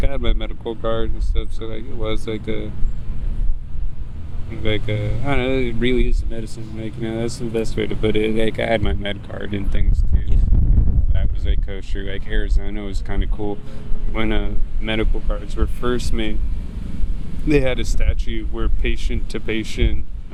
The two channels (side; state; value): both; identical; correlation 1.00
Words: I had my medical card and stuff, so like it was like a I don't know, it really is a medicine. Like, you know, that's the best way to put it. Like I had my med card and things too. Yeah. That was like kosher. Like Arizona was kind of cool when medical cards were first made. They had a statute where patient to patient